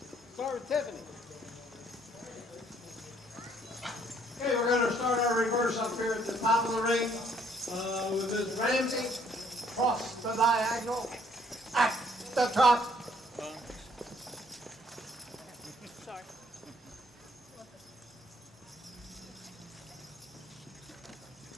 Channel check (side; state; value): both; normal; correlation 0.64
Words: Start with Tiffany. Okay, we're gonna start our reverse up here at the top of the ring, with Ms. Ramsey, cross the diagonal, at the top. Sorry.